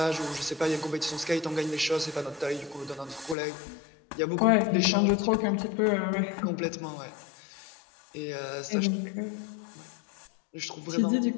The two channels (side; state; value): right; drops out; at 3.4 s